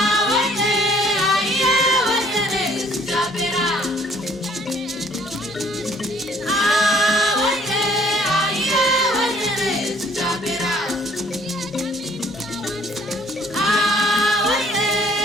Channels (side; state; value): both; normal; correlation 0.59